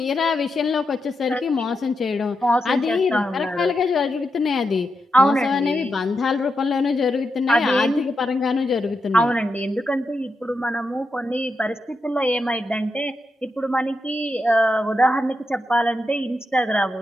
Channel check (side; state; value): both; normal; correlation 0.86